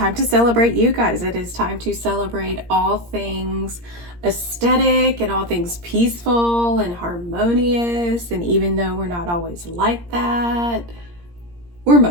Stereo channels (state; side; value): late; left; 17 ms